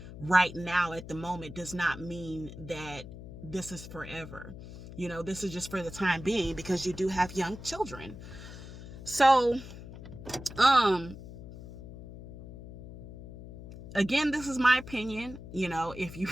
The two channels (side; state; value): left; noise; hum, 13 dB below the sound